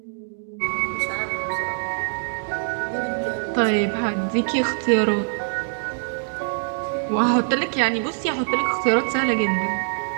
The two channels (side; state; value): left; silent; digital silence